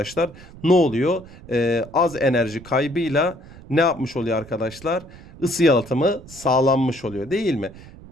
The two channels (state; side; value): noise; right; rumble, 18 dB below the sound